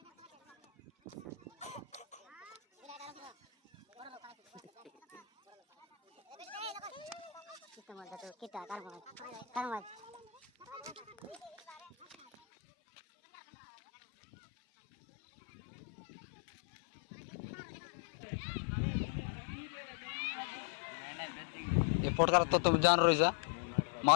কাস্টমার যত কিটা কার মাছ কার মাছ ইম্পোর্ট করার তো তুমি জান রয়েছে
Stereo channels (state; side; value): drops out; right; at 12.4 s